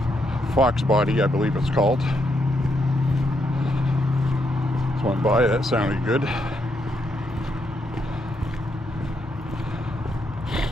Fox body, I believe it's called. Just went by, that sounded good.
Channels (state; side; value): normal; both; correlation 0.78